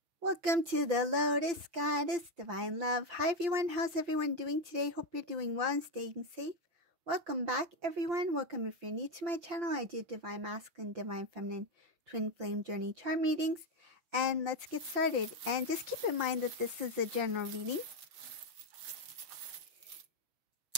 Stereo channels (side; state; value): left; late; 5.8 ms